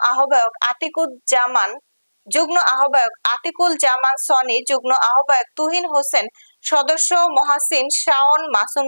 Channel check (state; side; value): inverted; both; correlation -1.00